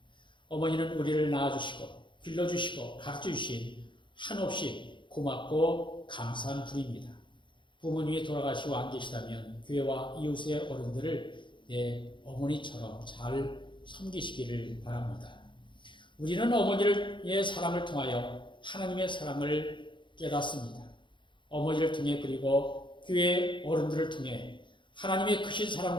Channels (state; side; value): late; right; 0.23 ms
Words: 어머니는 우리를 낳아주시고 길러주시고 가르쳐주신 한없이 고맙고 감사한 분입니다. 부모님이 돌아가시고 안 계시다면 교회와 이웃의 어른들을 내 어머니처럼 잘 섬기시기를 바랍니다. 우리는 어머니의 사랑을 통하여 하나님의 사랑을 깨닫습니다. 어머니를 통해 그리고 교회 어른들을 통해 하나님의 크신